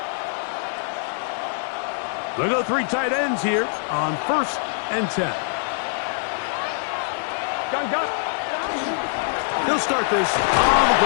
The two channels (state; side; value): silent; right; digital silence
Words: They'll go 3 tight ends here on 1st and 10. He'll start this on the